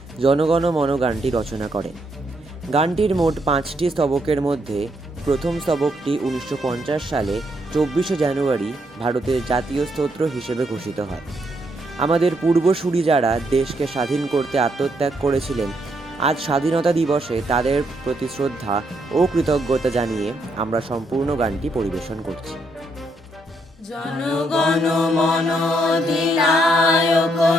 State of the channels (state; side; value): normal; both; correlation 0.76